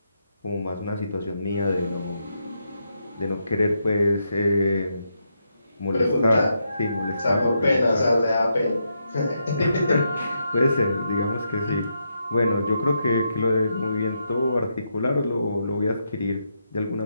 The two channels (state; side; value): inverted; both; correlation -0.81